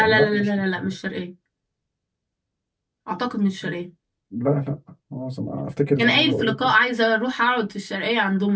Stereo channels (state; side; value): identical; both; correlation 1.00